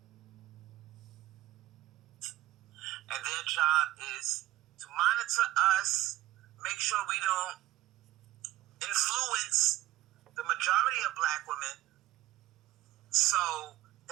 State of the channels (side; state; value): left; quieter; 15.9 dB